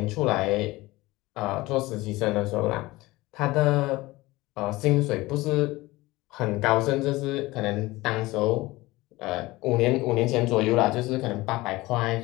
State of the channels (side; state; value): right; quieter; 20.0 dB